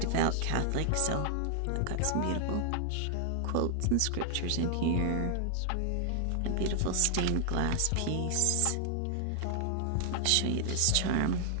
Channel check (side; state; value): both; different; correlation 0.00